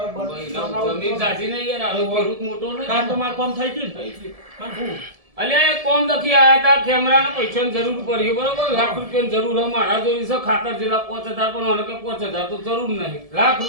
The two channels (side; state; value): left; late; 1.7 ms